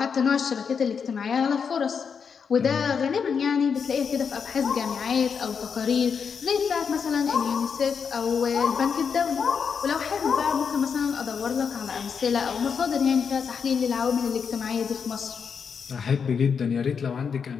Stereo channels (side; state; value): right; quieter; 6.4 dB